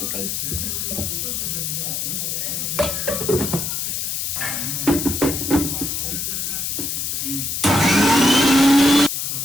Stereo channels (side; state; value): left; noise; hiss, 2 dB below the sound